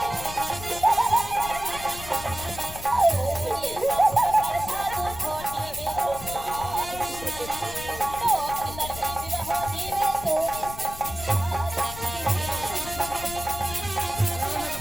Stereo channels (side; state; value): left; noise; rumble, 13 dB below the sound